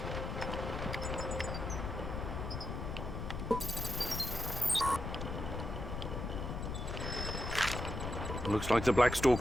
Looks like the Black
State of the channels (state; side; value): noise; left; rumble, 4 dB below the sound